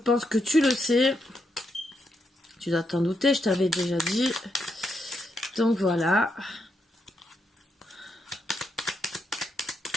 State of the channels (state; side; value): normal; both; correlation 0.81